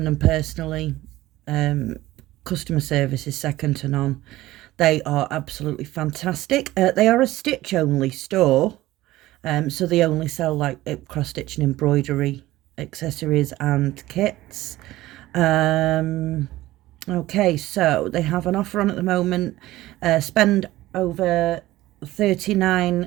them personally. Customer service is second to none. They are absolutely fantastic. They are a stitch only store, so they only sell like cross stitch and embroidery accessories and kits. Okay, so they have an offer on at the moment. Spend over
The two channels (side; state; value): left; quieter; 16.7 dB